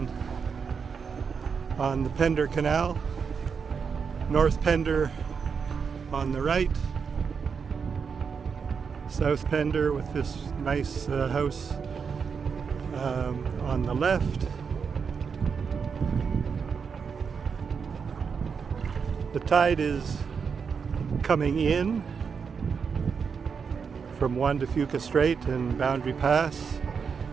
the Pender Canal. North Pender on the right, South Pender with this nice house on the left. The tide is coming in from One to Fuca Strait and Boundary Pass,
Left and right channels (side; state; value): left; quieter; 6.0 dB